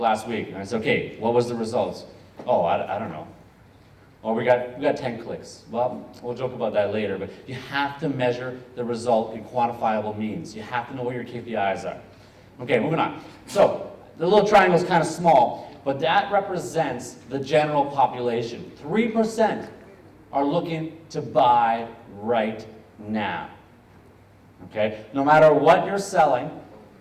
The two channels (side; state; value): both; identical; correlation 1.00